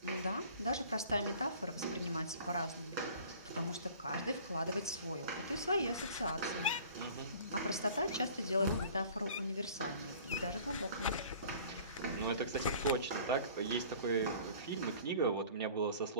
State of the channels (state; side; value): inverted; both; correlation -0.48